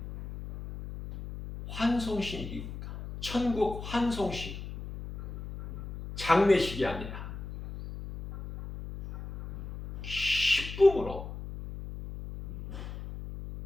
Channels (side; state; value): left; noise; hum, 10 dB below the sound